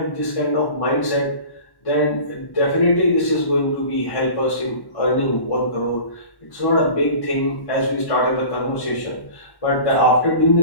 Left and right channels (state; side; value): late; right; 1.1 ms